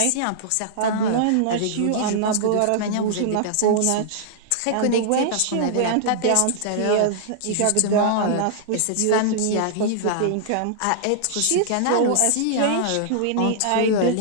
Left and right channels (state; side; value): different; both; correlation -0.01